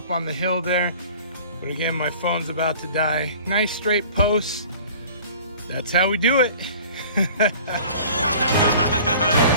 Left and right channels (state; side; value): inverted; both; correlation -0.46